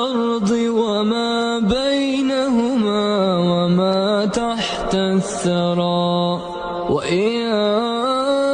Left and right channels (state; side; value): identical; both; correlation 1.00